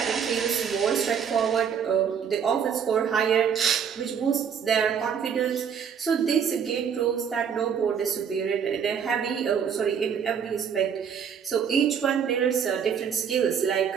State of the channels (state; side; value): quieter; left; 7.5 dB